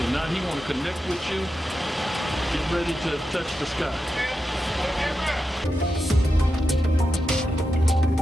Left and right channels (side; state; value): both; normal; correlation 0.89